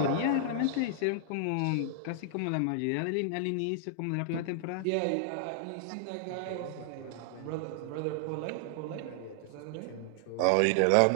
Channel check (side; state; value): both; different; correlation -0.01